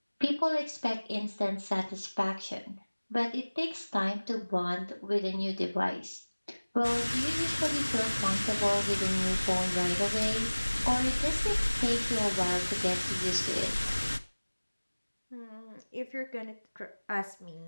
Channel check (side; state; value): both; inverted; correlation -1.00